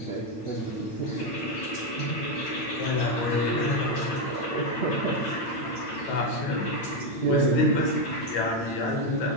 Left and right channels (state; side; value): late; right; 8.8 ms